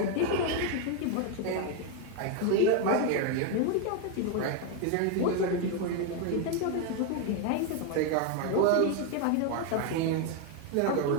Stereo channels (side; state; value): both; different; correlation 0.01